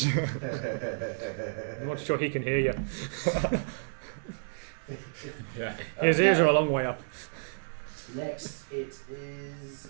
I'm not sure he can hear you. Yeah. His ears are a long way up. Next, it is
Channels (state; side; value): silent; left; digital silence